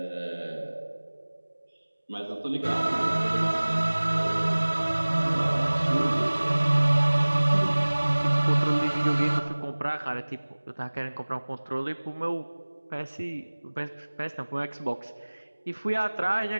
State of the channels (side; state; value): both; inverted; correlation -1.00